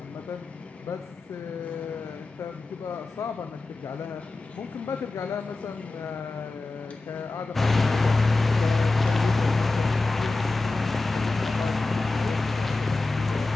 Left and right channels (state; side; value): quieter; right; 3.3 dB